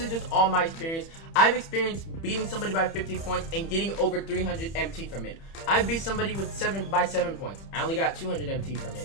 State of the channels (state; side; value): late; right; 30 ms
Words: just all my experience. I've experienced beating somebody by 50 points and getting over 300 MT from it. I beat somebody with 7 points. I only got 200 MT from